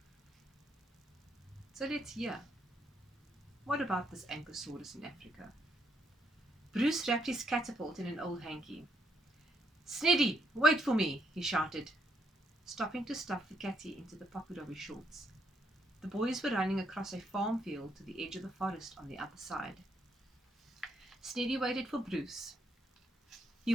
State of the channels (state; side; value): normal; both; correlation 0.74